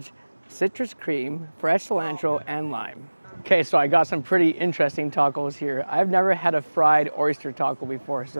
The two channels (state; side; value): inverted; both; correlation -1.00